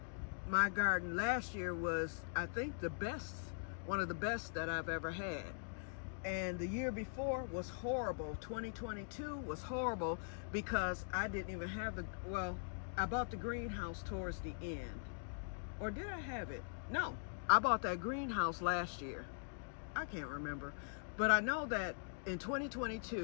My garden last year was, I think, one of the best that I've ever had. And the year before was horrible. 2022 was horrible because I didn't even have I bought the greenhouse towards the end. Or did I have it? No, I bought that greenhouse last year. I can't remember. But I know that in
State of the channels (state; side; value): silent; right; digital silence